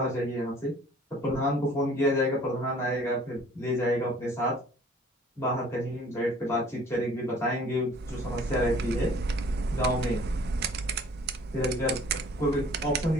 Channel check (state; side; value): normal; both; correlation 0.52